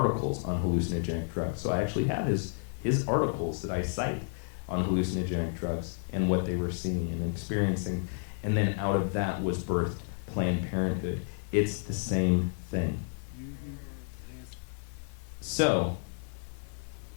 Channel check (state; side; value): silent; right; digital silence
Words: on hallucinogenic drugs. So I actually have his articles that I cite on hallucinogenic drugs and what they were seeing and experiencing. And then out of that was birthed Planned Parenthood. It's the same thing. So,